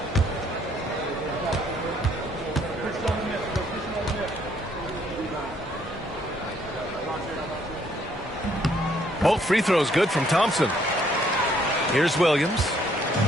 Both free throws good from Thompson. Here's Williams.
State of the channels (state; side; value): normal; both; correlation 0.67